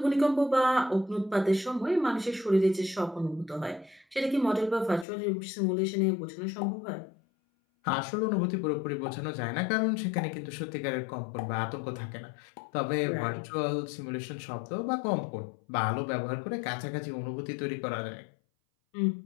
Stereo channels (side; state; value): right; drops out; at 5.1 s